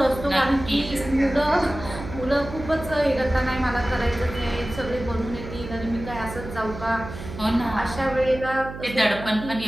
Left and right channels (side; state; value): right; noise; hum, 11 dB below the sound